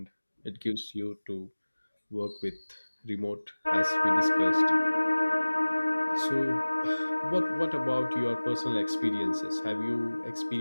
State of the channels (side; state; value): both; inverted; correlation -1.00